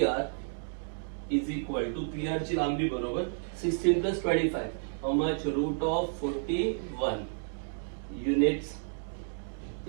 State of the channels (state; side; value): silent; left; digital silence